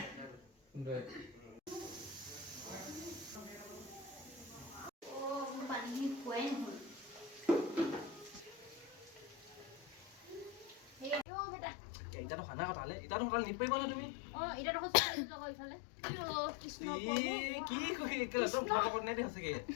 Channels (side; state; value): right; drops out; at 11.2 s